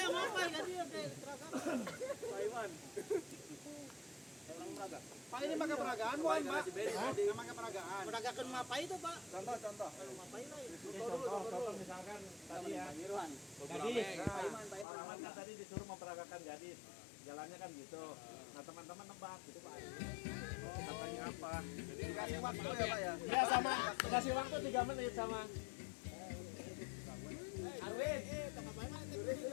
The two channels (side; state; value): right; drops out; at 14.9 s